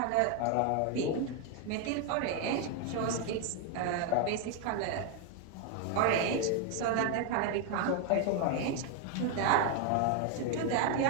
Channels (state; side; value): different; both; correlation 0.01